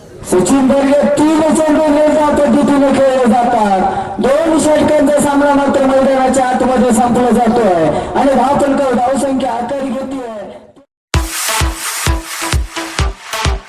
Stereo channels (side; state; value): both; identical; correlation 1.00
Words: सचिन बर्गे 3 चेंडू निर्धार पद्धतीने खेळले जातात. 2 षटकांचा सामना मात्र मैदानाच्या आतमध्ये संपला जातोय आणि धावफलक